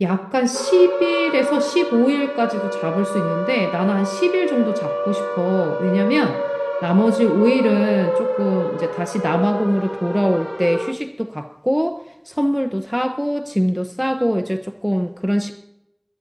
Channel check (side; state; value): both; identical; correlation 1.00